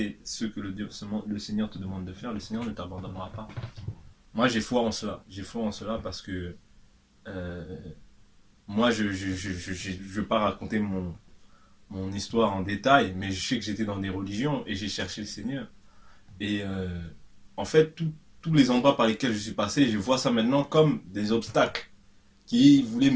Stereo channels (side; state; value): both; identical; correlation 1.00